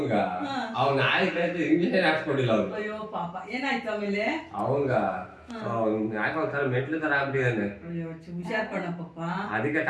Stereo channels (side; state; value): both; identical; correlation 1.00